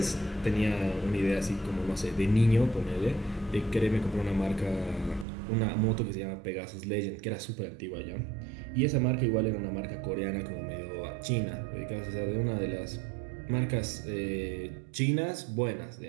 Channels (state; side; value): drops out; left; at 5.2 s